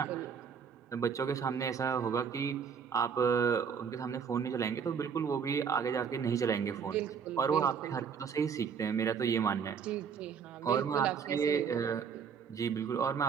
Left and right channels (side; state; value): left; quieter; 6.7 dB